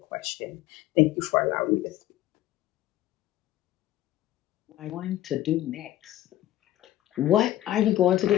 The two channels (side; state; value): right; quieter; 14.1 dB